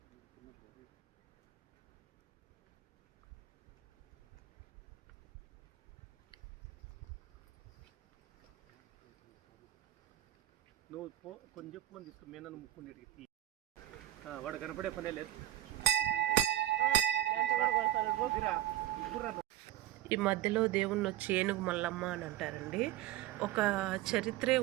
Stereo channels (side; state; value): left; quieter; 14.0 dB